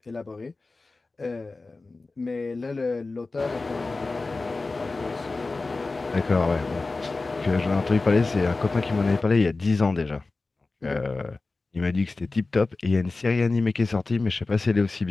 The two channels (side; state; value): right; quieter; 3.5 dB